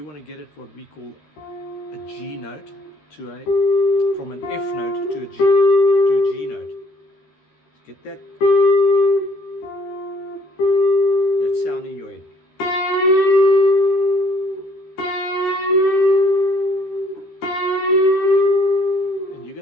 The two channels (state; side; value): late; right; 13 ms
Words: want to get it what we call a G note from an F note to a G note. Get that sound in your head.